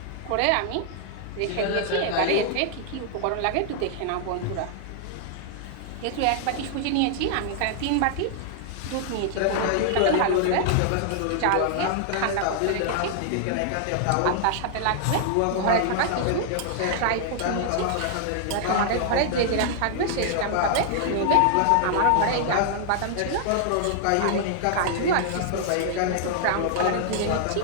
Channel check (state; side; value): different; both; correlation -0.01